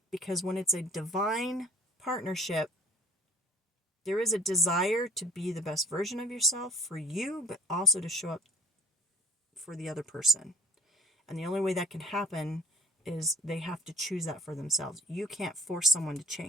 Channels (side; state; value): both; normal; correlation 0.49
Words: Because when it's a divine partnership, there is a desire to be the best version of yourself for you, but also to show up for the other person. And the only way that can happen is they have to choose that for themselves. You can't force someone to